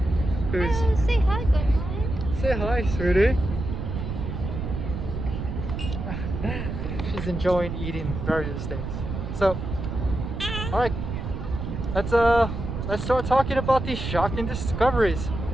Who's Say hi, Gwen. say hi, sweetie. She's enjoying eating various things. So, all right, let's start talking about these shocking discoveries.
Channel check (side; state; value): right; noise; rumble, 5 dB below the sound